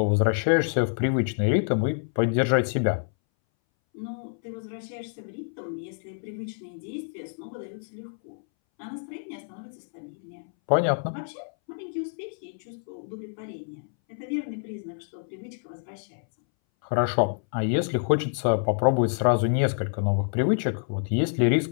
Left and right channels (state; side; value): silent; right; 60 dB below the other